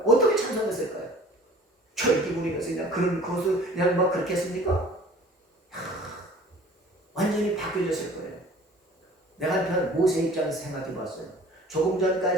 어떻게 찬송했을까요? 철기 부리면서 그냥 그런 것을 그냥 막 그렇게 했습니까? 완전히 바뀌어졌을 거예요. 내가 한편 모세 입장에서 생각해 봤어요. 조금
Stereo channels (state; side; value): normal; both; correlation 0.48